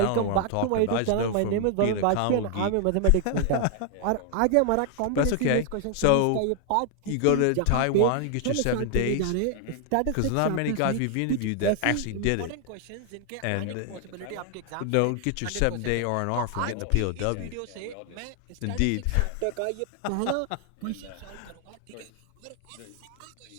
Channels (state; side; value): different; both; correlation 0.00